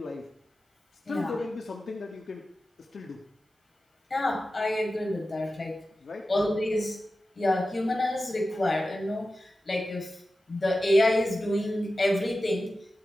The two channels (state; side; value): normal; both; correlation 0.93